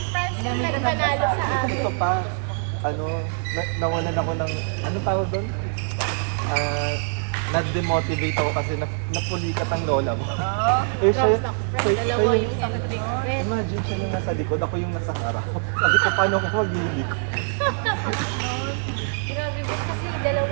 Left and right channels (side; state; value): left; silent; 63 dB below the other